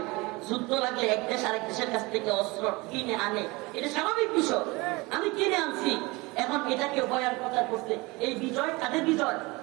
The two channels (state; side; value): quieter; left; 24.0 dB